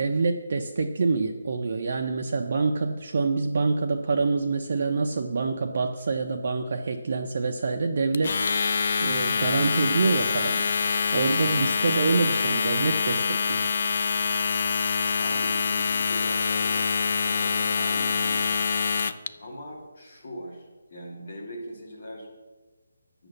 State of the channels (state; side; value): inverted; both; correlation -0.84